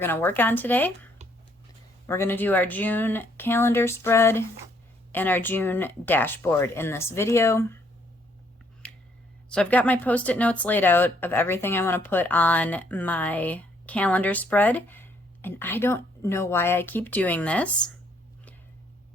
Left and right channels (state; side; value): normal; both; correlation 0.68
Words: to work on today. We're going to do our June calendar spread and our June dashboard in this video. So I've got my post-it notes laid out of everything I want to put on my calendar spread. And I don't know why I keep doing this.